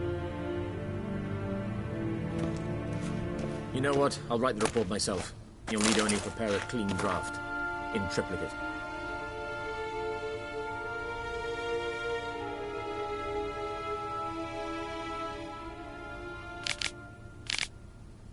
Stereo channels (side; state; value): both; identical; correlation 1.00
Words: You know what? I'll write the report myself. You'll need only prepare a clean draft. In triplicate.